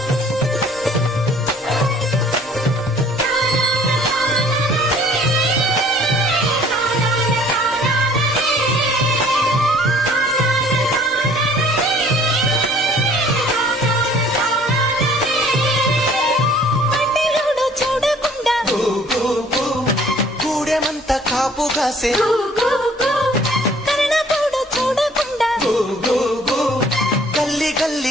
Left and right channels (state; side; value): normal; both; correlation 0.55